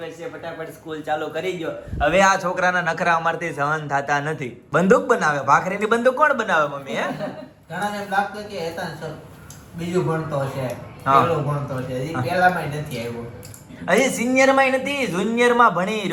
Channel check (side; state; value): both; identical; correlation 1.00